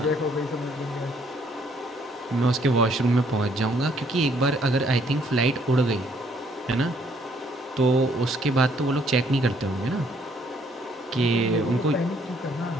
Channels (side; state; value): both; normal; correlation 0.66